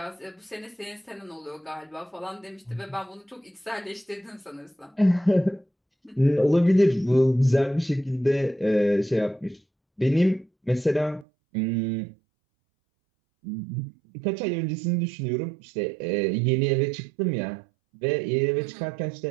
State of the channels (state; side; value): drops out; left; at 11.2 s